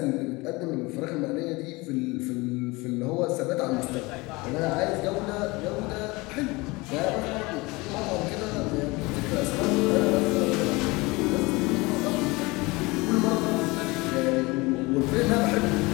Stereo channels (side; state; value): right; quieter; 23.7 dB